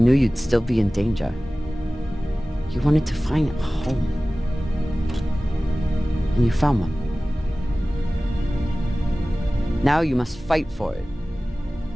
you'd still be in danger. You wanted to find a home. And you found one. Now you must fight for it.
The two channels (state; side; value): normal; both; correlation 0.97